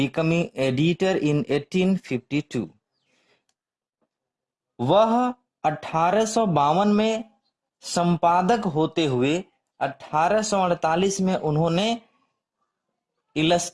editor in 1852. वह 1852 में संपादक होते हुए 1848 में उन्होंने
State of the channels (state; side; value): identical; both; correlation 1.00